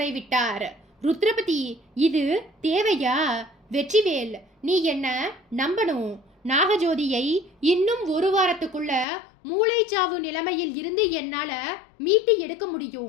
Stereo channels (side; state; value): right; drops out; at 9.1 s